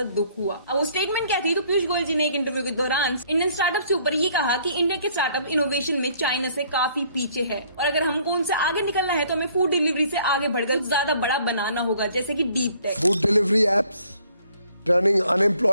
दुख हुआ। अब वो स्टेटमेंट क्या थी, तो पीयूष गोयल जी ने एक इंटरव्यू के दौरान इंडियन स्टार्टअप के ऊपर ये कहा कि इंडिया के स्टार्टअप इनोवेशन में चाइना से काफी पीछे है और अगर हमको उनसे आगे निकलना है तो हमें फूड डिलीवरी से आगे बढ़कर ज्यादा बड़ा बनाना होगा, जैसे कि deep tech. Food delivery apps turning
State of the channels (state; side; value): inverted; both; correlation -0.61